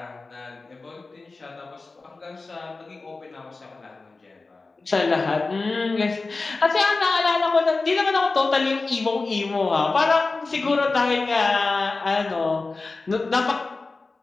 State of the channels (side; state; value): right; quieter; 3.7 dB